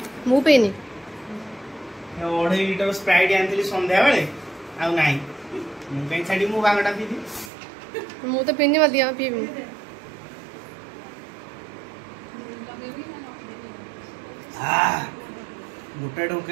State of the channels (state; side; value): drops out; left; at 7.5 s